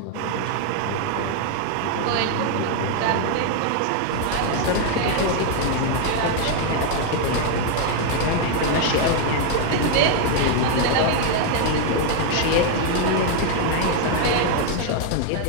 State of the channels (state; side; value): different; both; correlation 0.00